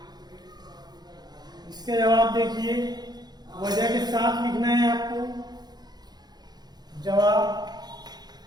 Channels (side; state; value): left; late; 0.20 ms